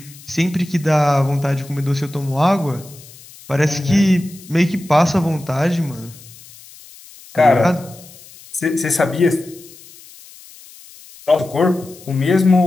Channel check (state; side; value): noise; left; hiss, 21 dB below the sound